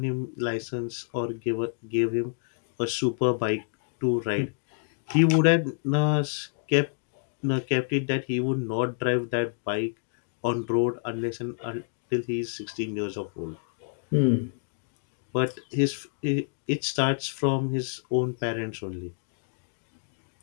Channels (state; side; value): silent; right; digital silence